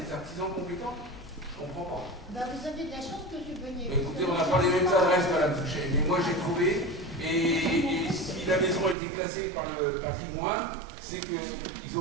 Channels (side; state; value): left; drops out; at 9.0 s